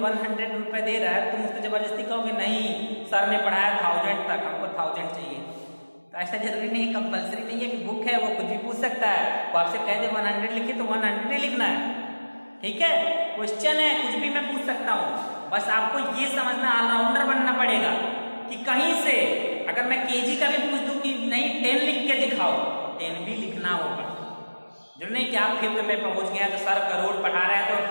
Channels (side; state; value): both; inverted; correlation -1.00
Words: रुपए दे रहा है तुम उसको जबरदस्ती कहोगे नहीं सर ने पढ़ाया 1000 तक, हमको 1000 चाहिए, तो ऐसा जरूरी नहीं, कंपलसरी नहीं है कि बुक है वो कुछ भी पूछ सकता है, वो आपसे कह दे 100 लिखिए तो 100 ही लिखना है, ठीक है, क्वेश्चन है कुछ भी मैं पूछ सकता हूँ, बस आपको ये समझना ऑलराउंडर बनना पड़ेगा कि कहीं से अगर मैं केजी का भी पूछ दूं कि नहीं 10 लिख के दिखाओ, 10 भी लिखना होगा, जो नहीं कि आप फिफ्थ में पहुंच गए तो सर करोड़ पढ़ा रहे हैं तो